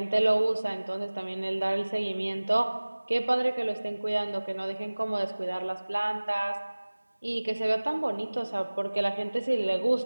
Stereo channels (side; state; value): both; inverted; correlation -1.00